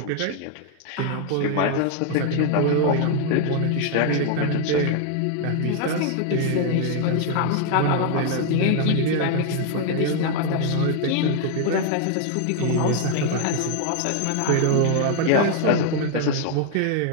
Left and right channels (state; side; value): different; both; correlation 0.00